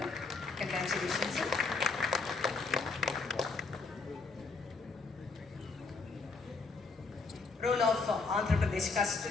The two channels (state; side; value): quieter; right; 4.1 dB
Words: Congratulations, sir. Role of Andhra Pradesh